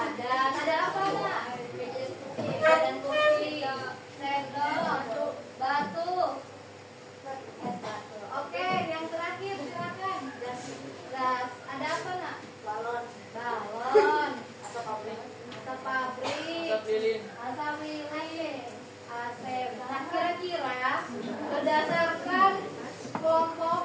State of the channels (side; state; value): both; identical; correlation 1.00